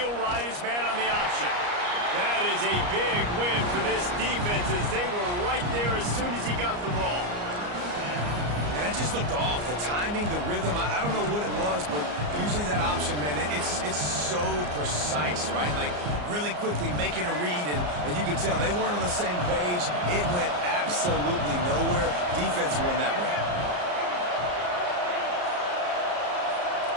ride his man on the option. That is a big win for this defense as they were right there as soon as he got the ball. And that just looked off. The timing, the rhythm, I don't know what it was, but usually that option, man, it's so precise, right? Like, really quickly making a read, and you could tell they weren't on the same page. It went absolutely nowhere. Defense won that one.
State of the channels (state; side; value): late; left; 34 ms